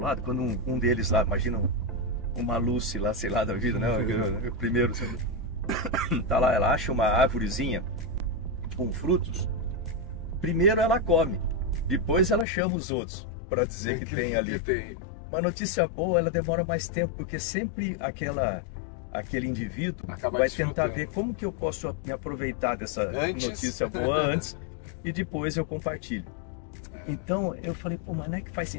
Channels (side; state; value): right; drops out; at 12.5 s